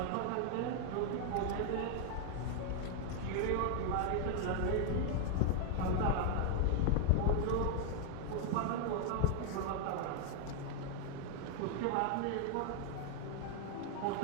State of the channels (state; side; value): different; both; correlation 0.00